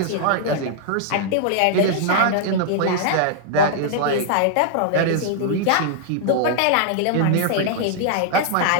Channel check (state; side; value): different; both; correlation -0.01